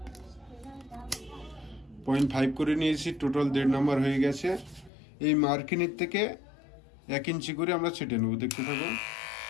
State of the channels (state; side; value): drops out; right; at 4.9 s